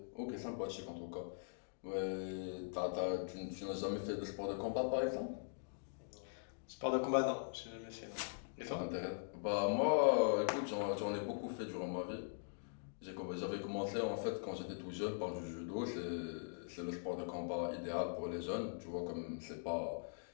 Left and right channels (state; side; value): silent; right; digital silence